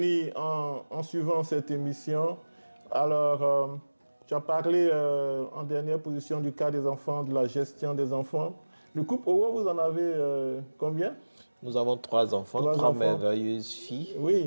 en suivant cette émission. Alors, tu as parlé en dernière position du cas des enfants, de la gestion des enfants. Le couple Owo, vous en avez combien? Nous avons 3 enfants, 3 merveilleuses filles.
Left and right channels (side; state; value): both; inverted; correlation -1.00